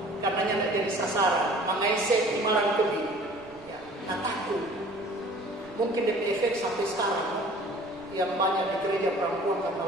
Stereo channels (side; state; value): right; noise; rumble, 25 dB below the sound